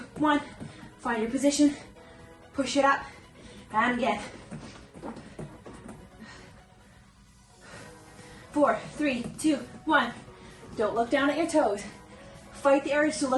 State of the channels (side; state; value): both; identical; correlation 1.00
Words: 1. Find your position, push it up, and again. 4, 3, 2, 1. Don't look down at your toes. Fight the urge to